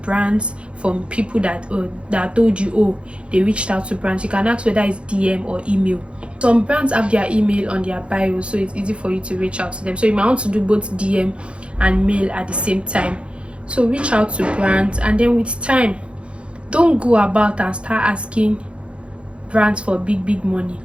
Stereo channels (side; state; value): left; late; 0.058 ms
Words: brands from people that told you, oh, they reached out to brands. You can ask whether it's DM or email. Some brands have their email on their bio, so it's easy for you to reach out to them. So you might want to do both DM and mail at the same time. So reach out to brands, and then with time, don't go about and start asking brands for big money,